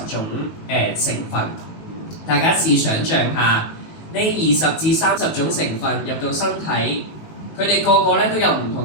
種成分。大家試想像下，呢20至30種成分入到身體，佢哋個個咧都有唔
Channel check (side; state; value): right; late; 19 ms